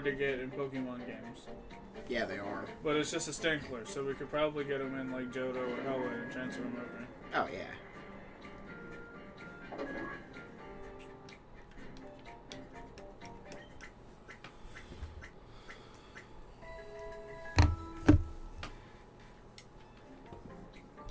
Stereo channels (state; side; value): identical; both; correlation 1.00